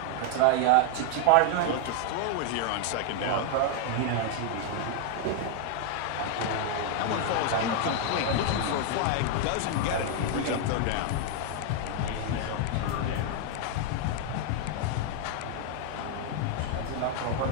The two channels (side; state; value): both; different; correlation 0.00